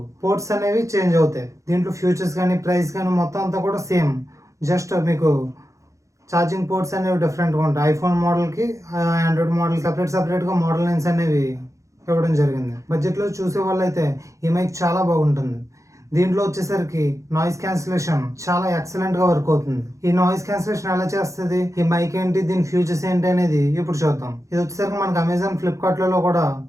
పోర్ట్స్ అనేవి చేంజ్ అవుతాయి. దీంట్లో ఫ్యూచర్స్ కానీ ప్రైస్ కానీ మొత్తం అంతా కూడా సేమ్, జస్ట్ మీకు ఛార్జింగ్ పోర్ట్స్ అనేవి డిఫరెంట్గా ఉంటాయి. ఐఫోన్ మోడల్కి ఆండ్రాయిడ్ మోడల్ సపరేట్గా మోడల్ లైన్స్ అనేవి ఇవ్వడం జరిగింది. బడ్జెట్లో చూసే వాళ్ళు అయితే ఈ మైక్ చాలా బాగుంటుంది. దీంట్లో వచ్చేసరికి నాయిస్ క్యాన్సిలేషన్ చాలా ఎక్సలెంట్గా వర్క్ అవుతుంది. ఈ నాయిస్ క్యాన్సిలేషన్ ఎలా చేస్తుంది, ఈ మైక్ ఏంటి, దీని ఫ్యూచర్స్ ఏంటి అనేది ఇప్పుడు చూద్దాం. ఇది వచ్చేసరికి మనకి అమెజాన్, ఫ్లిప్కార్ట్లలో కూడా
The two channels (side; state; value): left; late; 0.15 ms